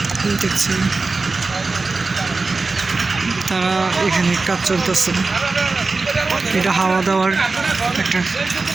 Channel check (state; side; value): quieter; left; 3.9 dB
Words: দেখছেন, তারা এখানে কাজ চলতেছে। এটা হাওয়া দেওয়ার একটা